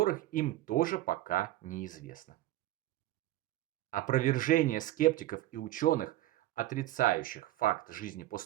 им тоже пока неизвестно. Опровержение скептиков и ученых, отрицающих факт жизни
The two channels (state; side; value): quieter; left; 15.6 dB